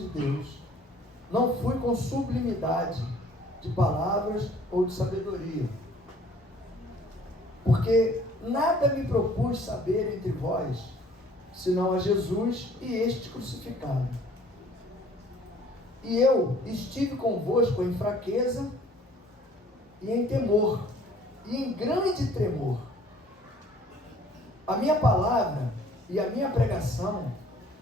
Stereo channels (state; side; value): normal; both; correlation 0.55